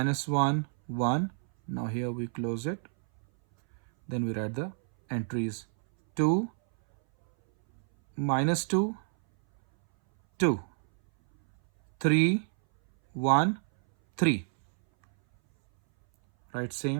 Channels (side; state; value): left; silent; 59 dB below the other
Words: 1, 1. Now here we close it. Then we write the entries. 2, minus 2, 2, 3, 1, 3. Right,